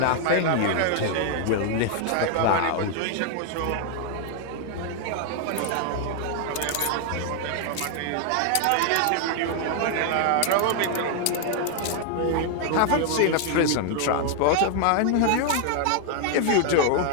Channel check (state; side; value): different; both; correlation 0.00